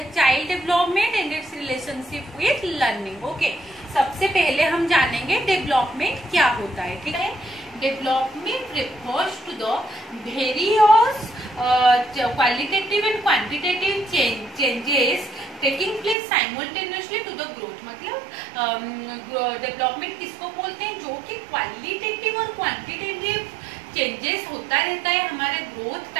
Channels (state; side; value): drops out; left; at 16.2 s